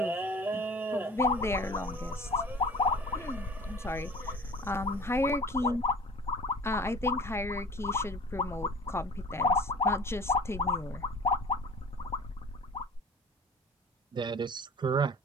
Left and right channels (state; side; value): normal; both; correlation 0.43